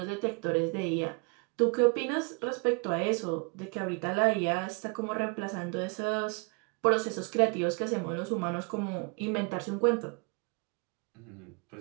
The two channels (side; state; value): left; quieter; 32.8 dB